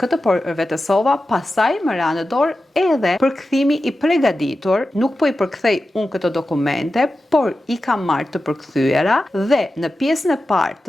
përvetësova, pastaj më ra në dorë edhe përkthimi i përgatitur, nuk po i përkthej unë këto dokumente, por i kam marrë të përkthyera dhe në pjesën e parë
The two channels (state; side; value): normal; both; correlation 0.92